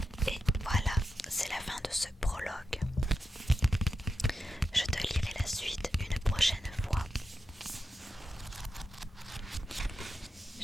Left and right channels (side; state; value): both; normal; correlation 0.88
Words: Et voilà, c'est la fin de ce prologue. Je te lirai la suite une prochaine fois.